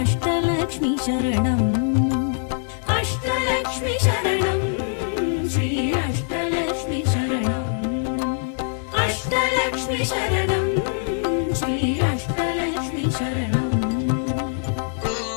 சரணம். அஷ்டலக்ஷ்மி சரணம் ஸ்ரீ அஷ்டலக்ஷ்மி சரணம். அஷ்டலக்ஷ்மி சரணம் ஸ்ரீ அஷ்டலக்ஷ்மி சரணம்.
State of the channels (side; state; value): right; silent; digital silence